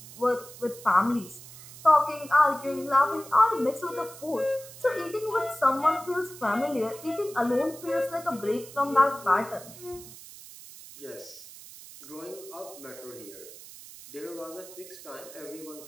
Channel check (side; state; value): right; noise; hiss, 16 dB below the sound